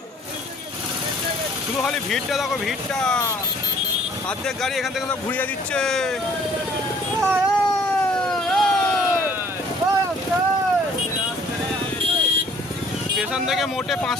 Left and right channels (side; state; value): both; normal; correlation 0.58